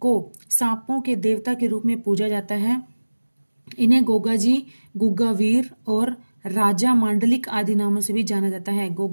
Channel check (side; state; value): both; inverted; correlation -1.00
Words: को सांपों के देवता के रूप में पूजा जाता है। इन्हें गोगा जी, गुग्गा वीर और राजा मांडलिक आदि नामों से भी जाना जाता है।